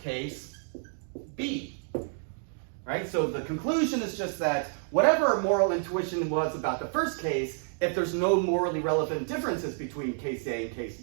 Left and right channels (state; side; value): silent; left; digital silence